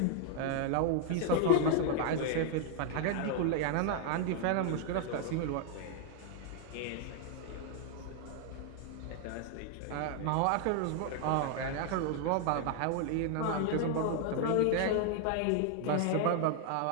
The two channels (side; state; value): both; different; correlation 0.00